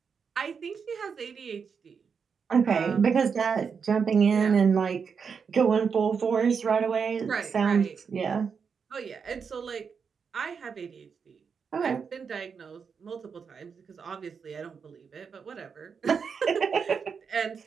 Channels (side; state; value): left; quieter; 6.1 dB